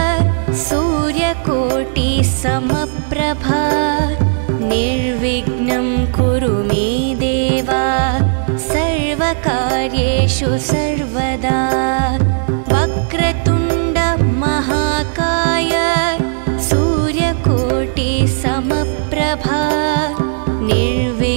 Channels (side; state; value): left; silent; digital silence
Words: सूर्यकोटि समप्रभा निर्विघ्नं कुरु मे देव सर्वकार्येषु सर्वदा वक्रतुण्ड महाकाय सूर्यकोटि समप्रभा